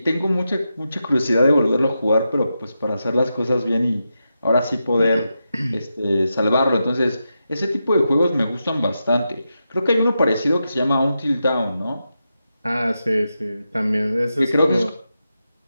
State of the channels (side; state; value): both; inverted; correlation -0.88